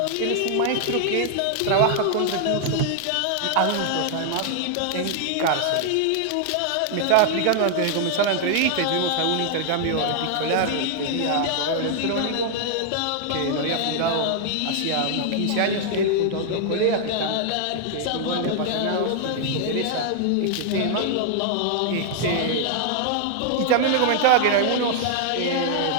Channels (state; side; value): different; both; correlation 0.00